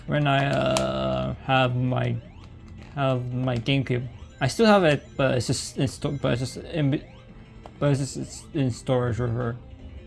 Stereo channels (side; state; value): both; identical; correlation 1.00